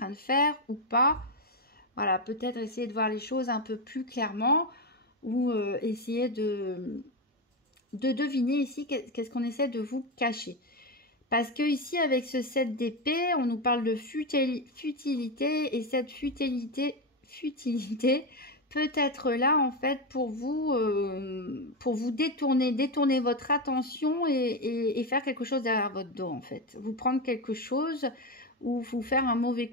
de faire ou pas. Voilà, peut-être essayer de voir les choses un peu plus clairement ou essayer de deviner ici qu'est-ce qu'on essaie de vous cacher. Parce que ici, avec ce 7 d'épée, on nous parle de futilité et cette futilité peut être là en fait pour vous détourner votre attention et faire quelque chose derrière votre dos en fait. Vous prendre quelque chose ou vous faire un mauvais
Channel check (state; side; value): normal; both; correlation 0.11